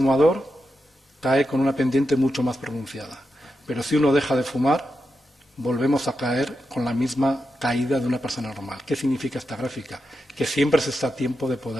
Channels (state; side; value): normal; both; correlation 0.87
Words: cae con una pendiente mucho más pronunciada. Pero si uno deja de fumar, volvemos a caer con la misma caída de una persona normal. ¿Qué significa esta gráfica? Que siempre se está a tiempo de